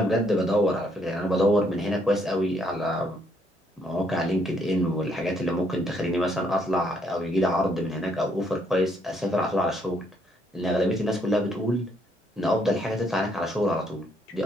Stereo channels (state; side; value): normal; both; correlation 0.70